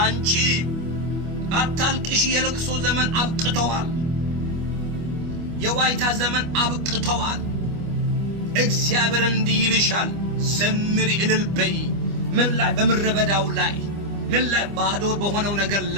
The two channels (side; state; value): left; late; 25 ms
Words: አንቺ አታልቅሽ። የለቅሶ ዘመን አብቅተዋል። የዋይታ ዘመን አብቅተዋል። እግዚአብሔር እንዲህ ይልሻል፣ ዘምሪ፣ እልል በይ። ምን ላይ? በምድረ በዳው ላይ። ምን ላይ? ባዶ በሆነው ነገር